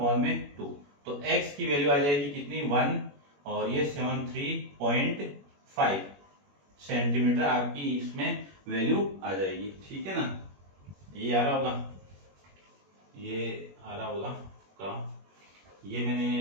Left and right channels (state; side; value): late; left; 21 ms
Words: तो x की वैल्यू आ जाएगी कितनी 1 और ये 73.5 सेंटीमीटर आपकी इसमें वैल्यू आ जाएगी, ठीक है ना। ये आ रहा होगा का, ये